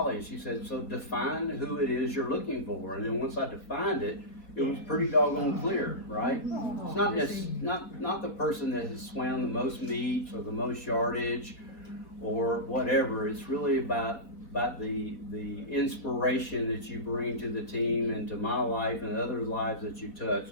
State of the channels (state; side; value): late; right; 4.2 ms